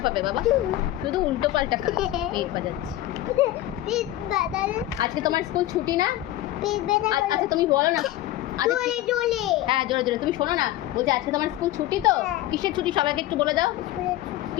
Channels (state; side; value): quieter; right; 14.7 dB